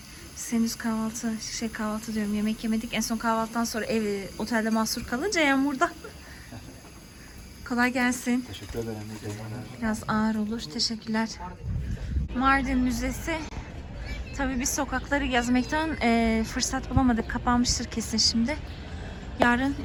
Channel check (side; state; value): both; identical; correlation 1.00